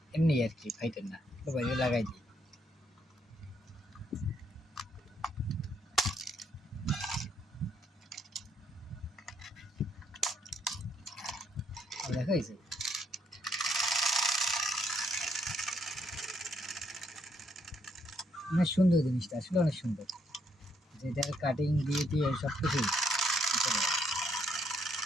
এমনি আর কি, ফাইটার না। তো বাইরে লাগাই দিই। দেখা হয়েছে, অনেক সুন্দর জিনিসটা, আসলে অনেক সুন্দর। যেটার কাটিং দিয়ে দিয়ে সব কিছুই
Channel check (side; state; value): both; normal; correlation 0.72